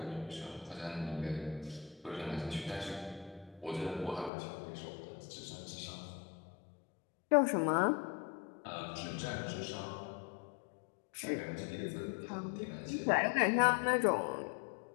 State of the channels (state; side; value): drops out; right; at 4.3 s